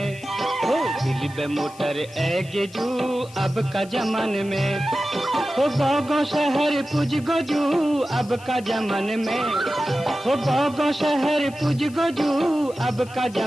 हो दिल बे मोटर एगेजू अब का जमान में, हो गाँव शहर पुज गोजू अब का जमान में, हो गाँव शहर पुज गोजू अब का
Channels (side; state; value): left; noise; hiss, 22 dB below the sound